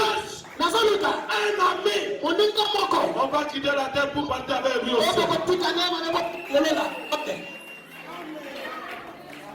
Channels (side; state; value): both; identical; correlation 1.00